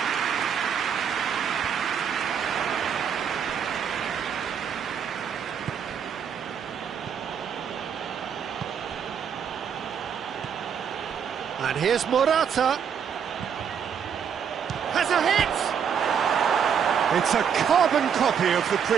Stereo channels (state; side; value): quieter; left; 7.6 dB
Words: And here's Morata. Has a hit! It's a carbon copy of the